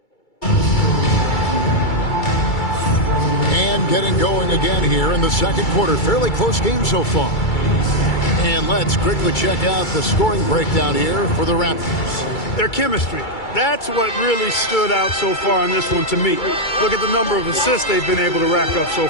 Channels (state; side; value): late; right; 2.3 ms